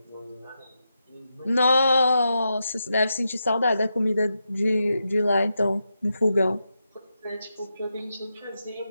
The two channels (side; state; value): both; inverted; correlation -0.87